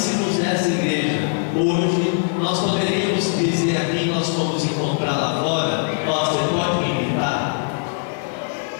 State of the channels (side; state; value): right; silent; digital silence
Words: dessa igreja hoje, nós poderíamos dizer aqui, nós fomos encontrar lá fora: ó, você pode me imitar?